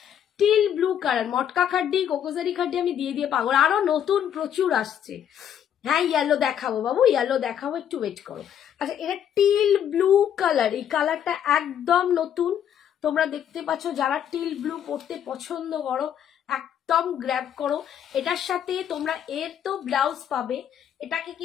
টিল ব্লু কালার, মটকা খাড্ডি, কোকোজারি খাড্ডি আমি দিয়ে দিয়ে পাগল। আরো নতুন প্রচুর আসছে। হ্যাঁ, ইয়েলো দেখাবো বাবু, ইয়েলো দেখাবো, একটু ওয়েট করো। আচ্ছা, এটা টিল ব্লু কালার, এই কালারটা একদম নতুন। তোমরা দেখতে পাচ্ছ, যারা টিল ব্লু পরতে পছন্দ করো একদম গ্র্যাব করো। এটার সাথে তোমরা এর তো ব্লাউজ পাবে। এটাকে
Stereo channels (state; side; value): quieter; right; 9.4 dB